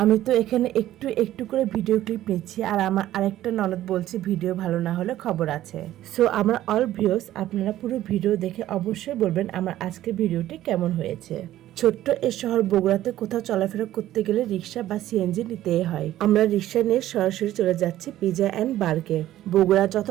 আমি তো এখানে একটু একটু করে ভিডিও ক্লিপ নিচ্ছি, আর আমার আরেকটা ননদ বলছে ভিডিও ভালো না হলে খবর আছে। সো আমার অল ভিউয়ার্স, আপনারা পুরো ভিডিও দেখে অবশ্যই বলবেন আমার আজকের ভিডিওটি কেমন হয়েছে। ছোট্ট এই শহর বগুড়াতে কোথাও চলাফেরা করতে গেলে রিক্সা বা সিএনজি নিতেই হয়। আমরা রিক্সা নিয়ে সরাসরি চলে যাচ্ছি পিজা অ্যান্ড বার্গে। বগুড়া যত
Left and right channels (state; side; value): quieter; left; 13.6 dB